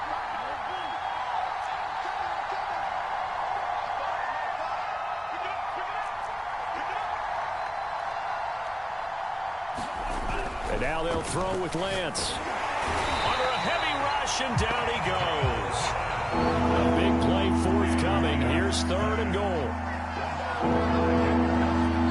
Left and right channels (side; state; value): both; identical; correlation 1.00